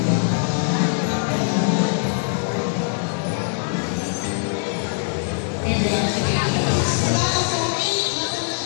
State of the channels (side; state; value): right; silent; digital silence